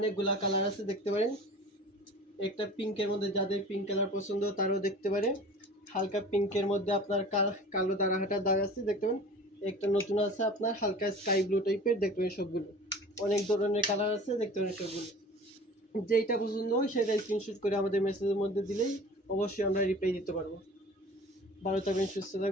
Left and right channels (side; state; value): both; normal; correlation 0.42